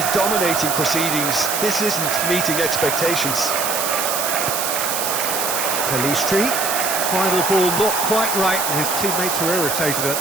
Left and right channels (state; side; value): noise; right; hiss, 1 dB below the sound